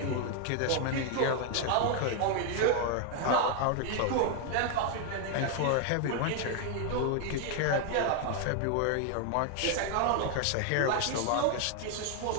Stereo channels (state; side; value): different; both; correlation 0.00